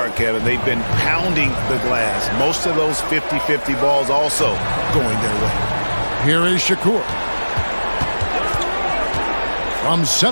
Kevin, they've been pounding the glass. Most of those 50-50 balls also going their way. Here is Shakur. From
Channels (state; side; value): inverted; both; correlation -1.00